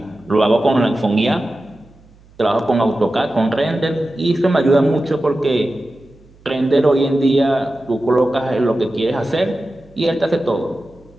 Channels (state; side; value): noise; right; hum, 27 dB below the sound